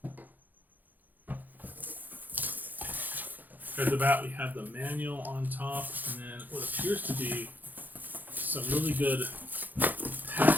At the bat, we have the manual on top, and then what appears to be some really good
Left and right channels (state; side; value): late; left; 0.085 ms